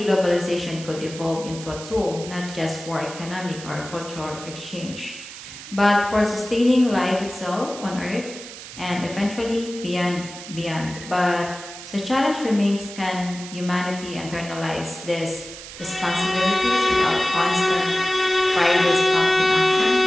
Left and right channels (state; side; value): noise; right; hiss, 13 dB below the sound